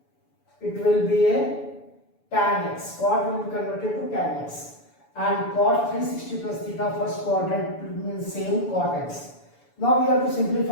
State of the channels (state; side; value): late; right; 7.0 ms